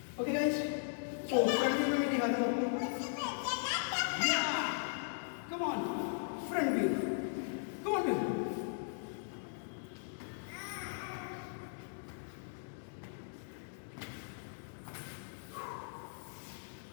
Okay guys, so मैं दिखाता हूँ आपको। Come on. Front view. Come on, view.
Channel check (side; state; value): right; silent; digital silence